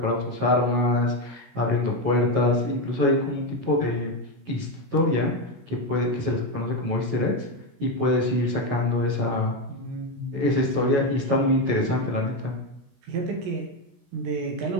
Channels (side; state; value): left; late; 16 ms